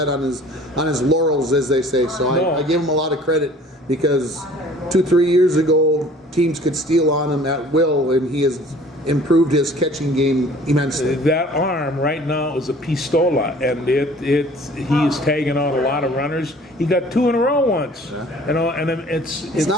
on his laurels, as they say. So No. I give him a lot of credit because 2-3 years ago, teams could steal on him at will, and he has improved his catching game immensely. that arm right now is a pistola, and he is tagging out a lot of runners. He got 2 in a row once, you know, and It's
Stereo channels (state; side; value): normal; both; correlation 0.50